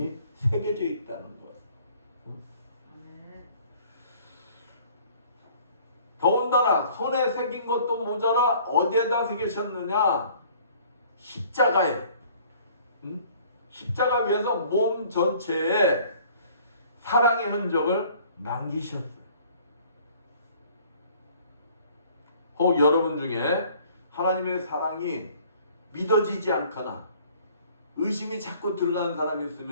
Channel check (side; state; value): both; inverted; correlation -0.54